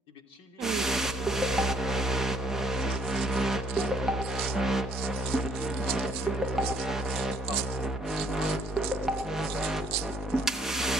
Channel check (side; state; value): both; normal; correlation 0.65